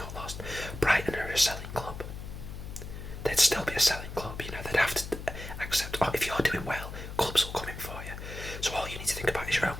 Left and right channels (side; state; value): left; noise; hum, 9 dB below the sound